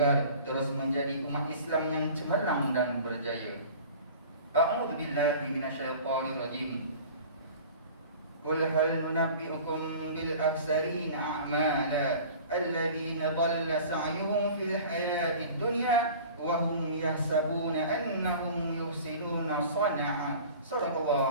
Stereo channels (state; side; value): inverted; both; correlation -0.42